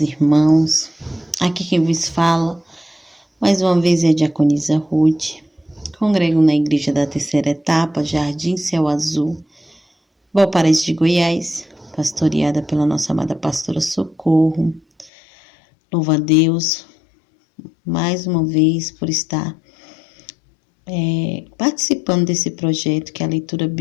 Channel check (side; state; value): right; drops out; at 15.1 s